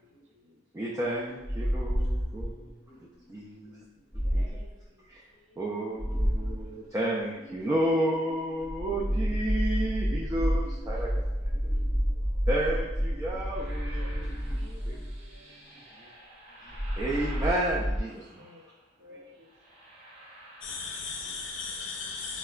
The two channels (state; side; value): normal; both; correlation 0.80